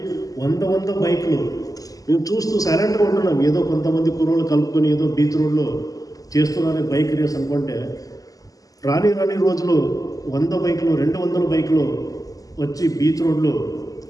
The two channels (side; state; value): right; late; 0.17 ms